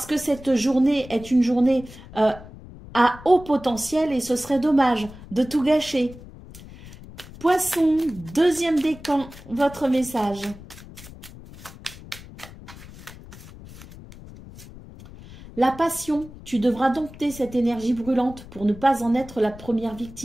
que cette journée est une journée à haut potentiel et ce serait dommage de tout gâcher. Poisson, deuxième décan, votre message. La passion, tu devras dompter cette énergie brûlante pour ne pas en être la première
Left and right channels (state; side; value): noise; left; rumble, 17 dB below the sound